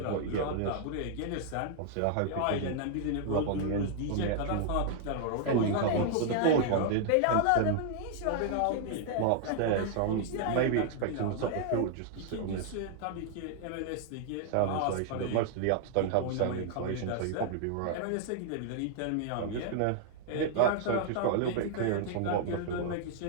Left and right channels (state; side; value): different; both; correlation 0.00